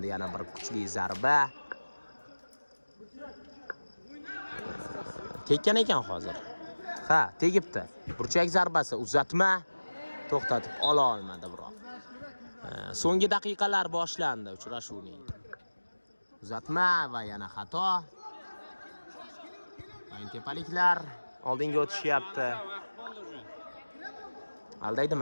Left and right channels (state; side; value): inverted; both; correlation -1.00